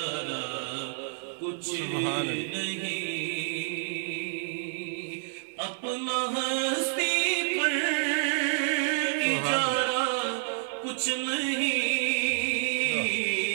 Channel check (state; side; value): silent; left; 59 dB below the other